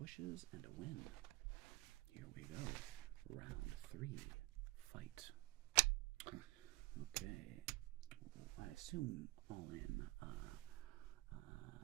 and a win. Here we go. Round 3. Fight. Okay. I assume all in.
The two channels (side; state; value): left; quieter; 21.4 dB